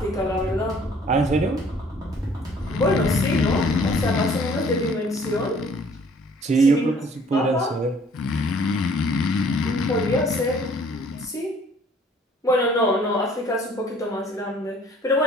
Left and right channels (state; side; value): normal; both; correlation 0.56